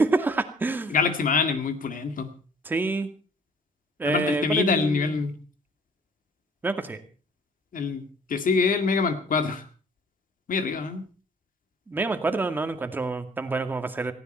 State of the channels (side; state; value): both; normal; correlation 0.54